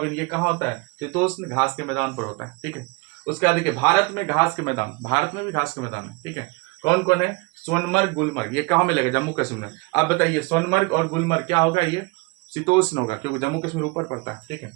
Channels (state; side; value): quieter; left; 27.5 dB